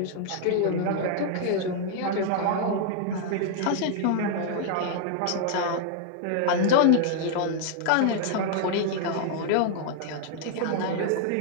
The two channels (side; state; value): both; different; correlation 0.00